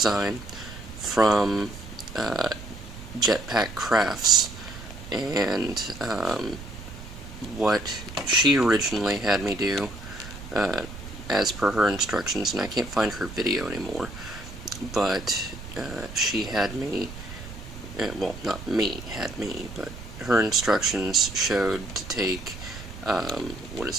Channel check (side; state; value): right; noise; rumble, 13 dB below the sound